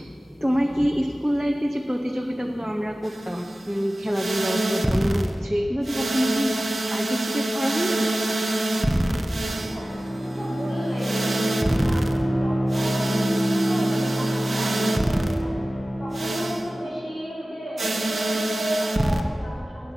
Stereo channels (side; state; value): both; normal; correlation 0.96